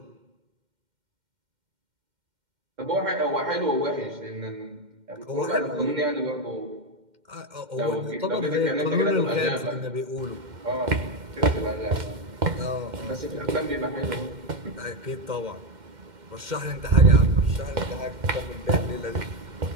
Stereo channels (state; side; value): late; left; 2.1 ms